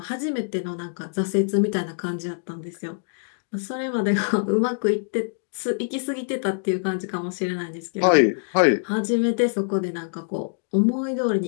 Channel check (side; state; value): right; silent; digital silence